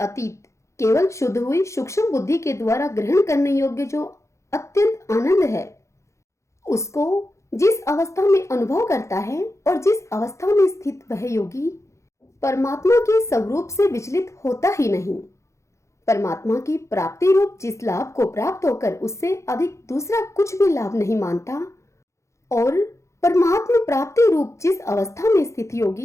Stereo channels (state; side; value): late; right; 0.14 ms